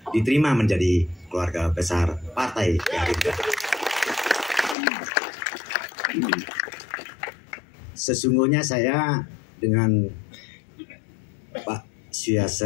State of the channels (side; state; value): right; drops out; at 4.8 s